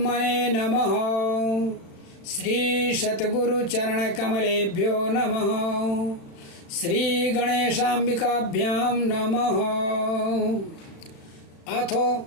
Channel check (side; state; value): right; late; 35 ms